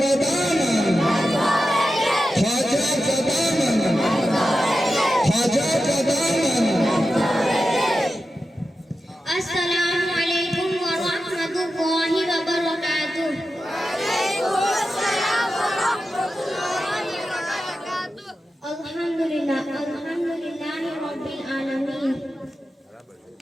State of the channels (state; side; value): normal; both; correlation 0.91